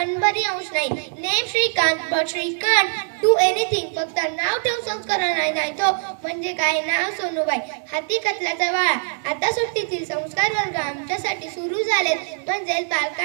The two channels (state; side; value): silent; left; digital silence